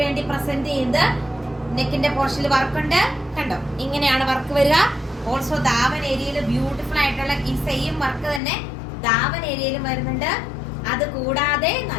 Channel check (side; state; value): right; drops out; at 8.4 s